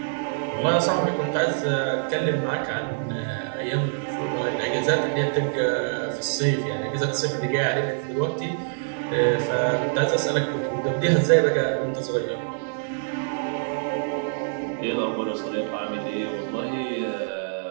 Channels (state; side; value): silent; left; digital silence